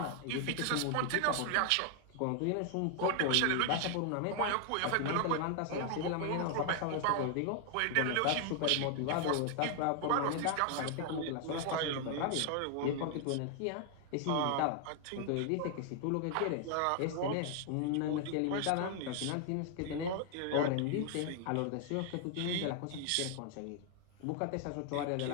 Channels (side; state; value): both; different; correlation 0.00